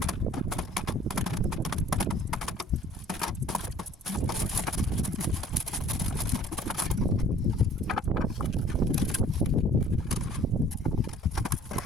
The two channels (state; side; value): normal; both; correlation 0.53